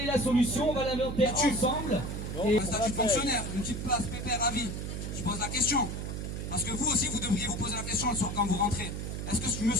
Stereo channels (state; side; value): noise; right; hum, 5 dB below the sound